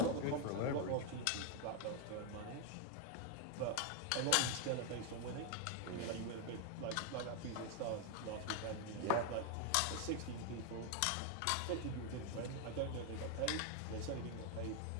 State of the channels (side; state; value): both; different; correlation 0.01